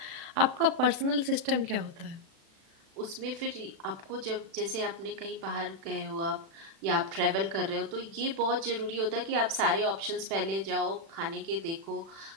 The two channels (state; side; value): late; left; 36 ms